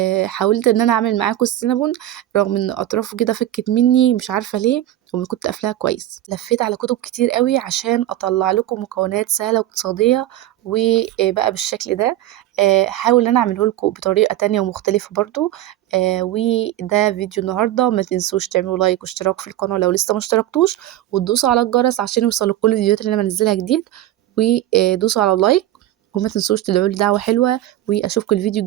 حاولت إن أنا أعمل معاكم السينابون رغم إن أطرافه كده فكت مني مش عارفة ليه، وكنت قافلاها كويس. لفيت على كتب كتير قوي عشان أطلع لكم مكونات سهلة واقتصادية وبقى بالشكل ده. هاحاول إن أنا أعمله لكم بطريقة تانية ومختلفة برضو. وده فيديو النهاردة. ما تنسوش تعملوا لايك واشتراك في القناة لو لسه ما اشتركتوش، وتدوسوا على الجرس عشان يوصلوا كل الفيديوهات اللي أنا بنزلها جديد. ودوسوا على اللايك، وما تنسوش تدعوا لي دعوة حلوة. وأشوفكم الفيديو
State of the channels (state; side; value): quieter; left; 13.9 dB